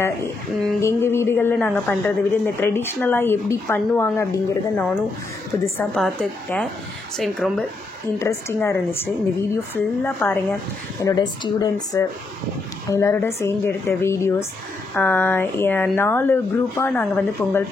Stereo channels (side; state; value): right; quieter; 3.3 dB